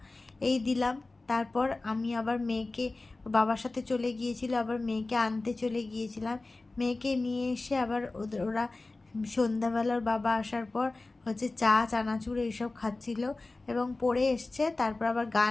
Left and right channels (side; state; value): right; quieter; 3.2 dB